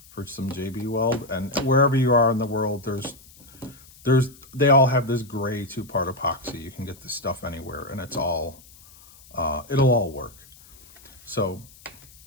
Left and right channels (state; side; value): noise; left; hiss, 24 dB below the sound